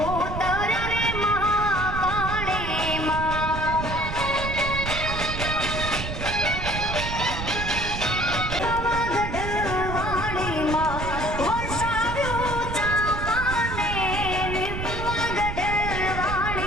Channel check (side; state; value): right; noise; rumble, 5 dB below the sound